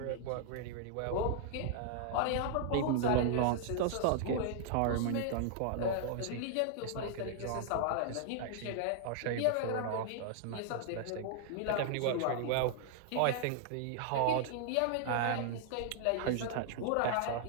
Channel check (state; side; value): different; both; correlation -0.01